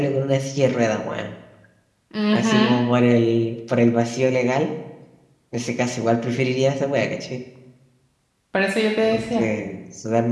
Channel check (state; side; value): identical; both; correlation 1.00